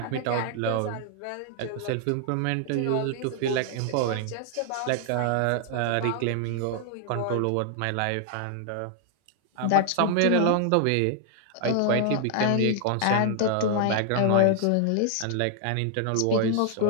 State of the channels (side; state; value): both; different; correlation 0.00